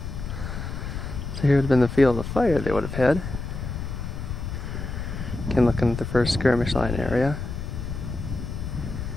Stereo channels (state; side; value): noise; left; rumble, 6 dB below the sound